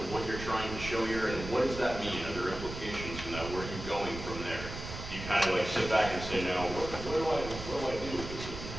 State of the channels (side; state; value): right; noise; rumble, 9 dB below the sound